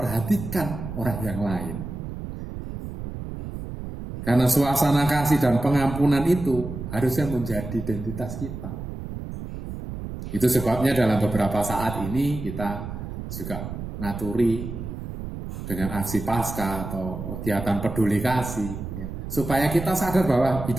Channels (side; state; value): right; noise; rumble, 8 dB below the sound